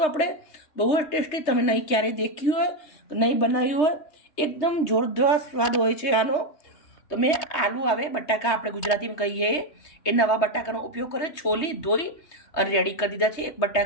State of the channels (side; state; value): right; late; 3.2 ms